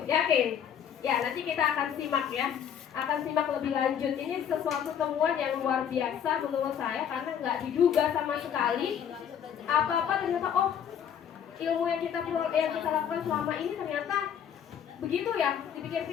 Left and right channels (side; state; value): right; quieter; 8.7 dB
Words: Yakin? Ya, nanti kita akan simak ya. Akan simak lebih lanjut. Ini sesuatu temuan yang luar biasa menurut saya karena nggak diduga sama sekali. Apa-apa ternyata ilmu yang kita lakukan selama ini ternyata begitu ya.